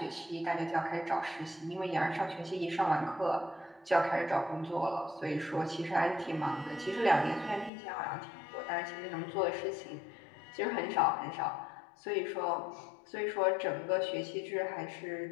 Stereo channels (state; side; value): drops out; right; at 7.7 s